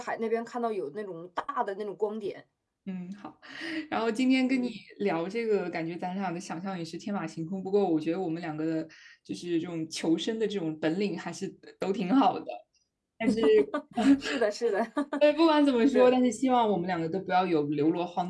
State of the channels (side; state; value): both; identical; correlation 1.00